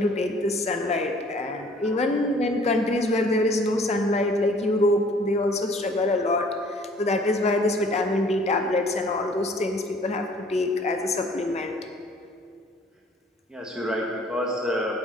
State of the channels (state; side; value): normal; both; correlation 0.55